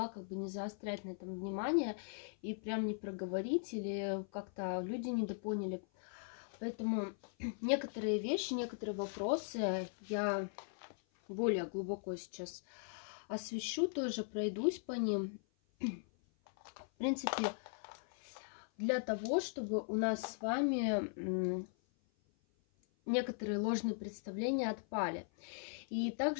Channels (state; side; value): silent; right; 52 dB below the other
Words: не заострять на этом внимание и прям не проговорить, или как-то люди недопоняли. Поэтому некоторые вещи, некоторые вопросы я более глубоко сейчас освещу, тоже пройдусь по ним. В принципе, для того, чтобы у нас с вами некоторые ложные представления отпали. И